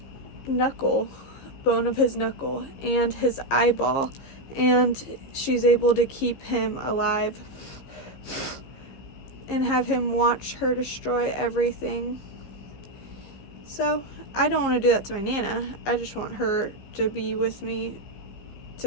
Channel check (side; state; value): right; late; 15 ms